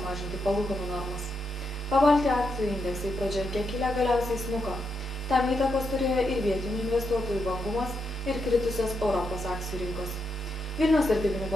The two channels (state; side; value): normal; both; correlation 0.83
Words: palūkanų normas. Pabaltijos akcijų indeksai pradžioje kiek kilę galiausiai smuko. Tam įtakos turėjo ir vietinių investuotojų vangumas ir kritusios Europos akcijų rinkos. Vilniaus vertybinių